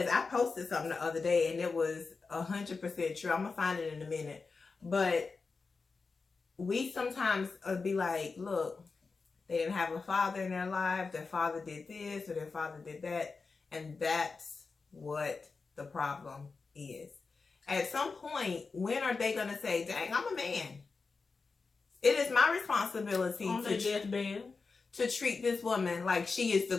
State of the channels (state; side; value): quieter; right; 4.4 dB